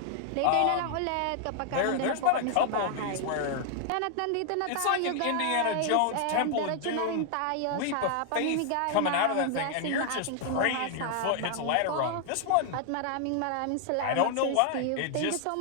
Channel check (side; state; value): both; different; correlation 0.00